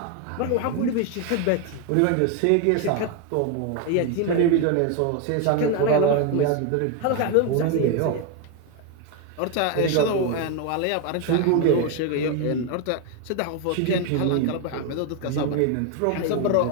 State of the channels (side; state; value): both; different; correlation 0.01